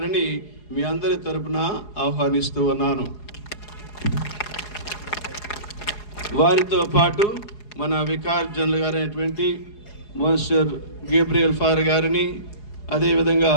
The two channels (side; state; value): right; late; 4.8 ms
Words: మీ అందరి తరపున ఆహ్వానిస్తూ ఉన్నాను. వారితో పాటు మన వికార్ జనరల్ గారైనటువంటి మోన్సిటర్ గేబ్రియల్ ఫాదర్ గారిని, అదేవిధంగా